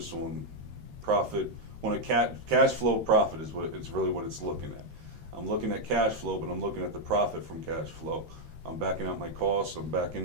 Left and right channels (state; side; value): late; left; 13 ms